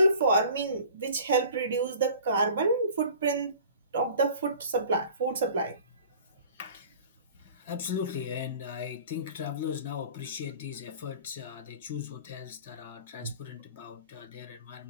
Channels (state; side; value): inverted; both; correlation -0.45